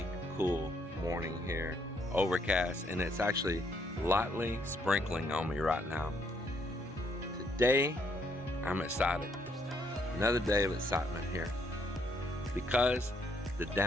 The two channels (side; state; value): both; normal; correlation 0.72